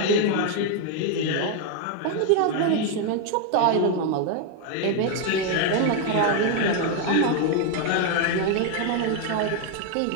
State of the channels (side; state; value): both; different; correlation 0.01